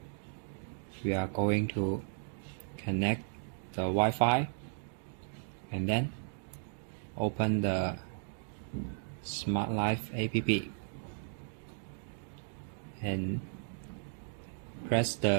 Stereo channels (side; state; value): left; silent; digital silence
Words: we are going to connect the Wi-Fi and then open the Smart Life app and press